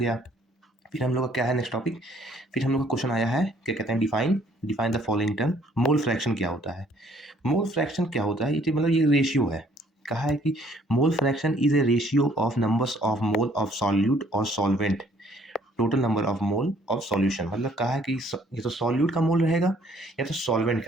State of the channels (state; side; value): normal; both; correlation 0.61